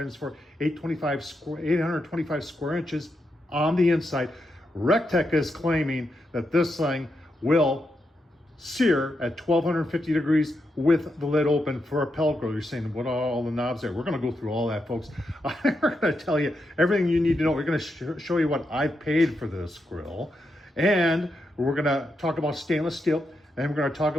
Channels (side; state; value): both; normal; correlation 0.84